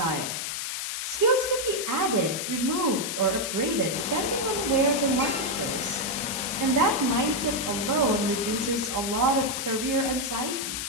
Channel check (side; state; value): left; noise; hiss, 3 dB below the sound